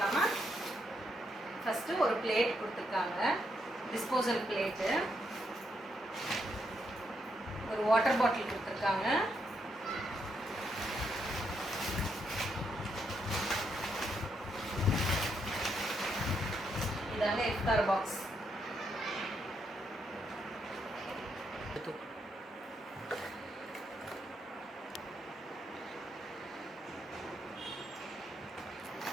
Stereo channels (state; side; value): normal; both; correlation 0.78